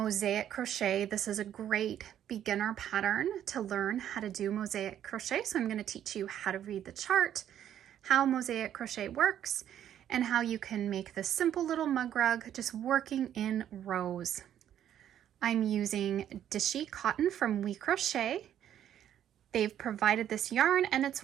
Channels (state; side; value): quieter; left; 10.5 dB